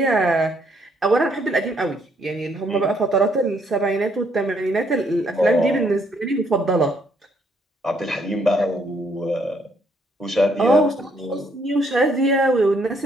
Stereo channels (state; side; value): normal; both; correlation 0.69